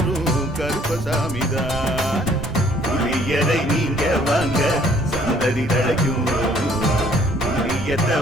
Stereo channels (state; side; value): noise; right; rumble, 9 dB below the sound